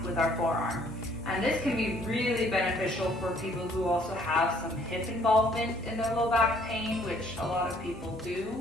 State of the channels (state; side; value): normal; both; correlation 0.61